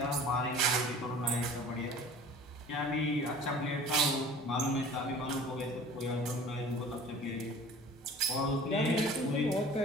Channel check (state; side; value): normal; both; correlation 0.45